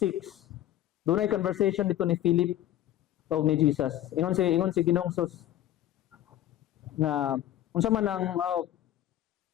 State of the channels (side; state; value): right; quieter; 12.8 dB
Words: doon ay conversation dito ni Philip o ni Jesus. Ingon si Ginoong Sus na unsa man ang